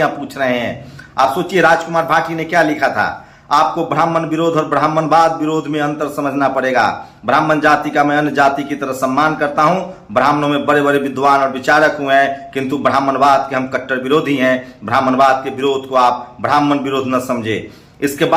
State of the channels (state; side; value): identical; both; correlation 1.00